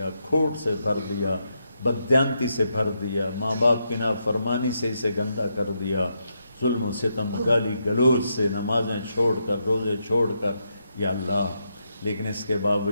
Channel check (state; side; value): inverted; both; correlation -0.81